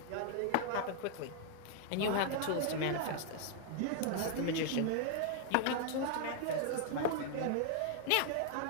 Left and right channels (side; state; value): both; different; correlation 0.00